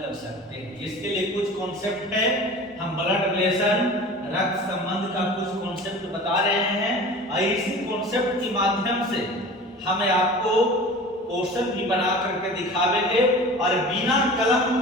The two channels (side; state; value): both; normal; correlation 0.38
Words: सकते हैं। इसके लिए कुछ कॉन्सेप्ट है, हम ब्लड रिलेशन रक्त संबंध का कुछ कॉन्सेप्ट बता रहे हैं और इसी कॉन्सेप्ट के माध्यम से हमें आपको क्वेश्चन भी बना करके दिखावेंगे और बिना कलम